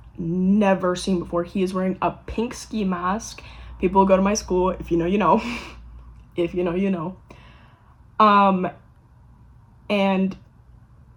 never seen before. He is wearing a pink ski mask. People who go to my school, if you know, you know. If you know, you know. And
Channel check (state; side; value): identical; both; correlation 1.00